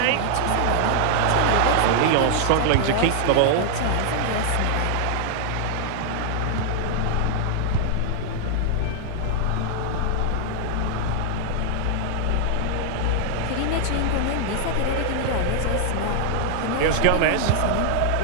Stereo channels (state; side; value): different; both; correlation 0.00